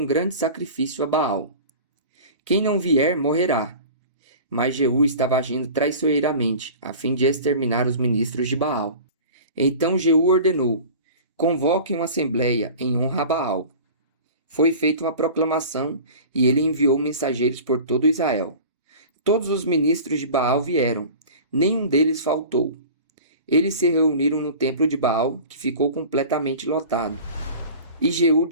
grande sacrifício a Baal. Quem não vier, morrerá. Mas Jeú estava agindo traiçoeiramente, a fim de exterminar os ministros de Baal. Então Jeú ordenou: convoquem uma assembleia em honra a Baal. Foi feita uma proclamação e ele enviou mensageiros por todo Israel. Todos os ministros de Baal vieram, nenhum deles faltou. Eles se reuniram no templo de Baal, que ficou completamente lotado. E Jeú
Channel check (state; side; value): inverted; both; correlation -0.39